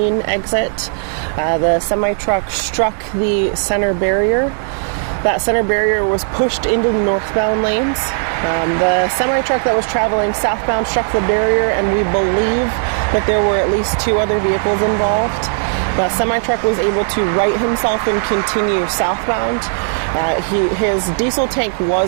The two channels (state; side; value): silent; left; digital silence